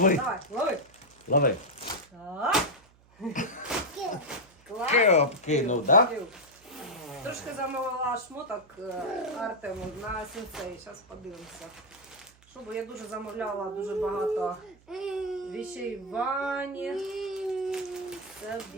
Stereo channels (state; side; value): noise; right; hum, 28 dB below the sound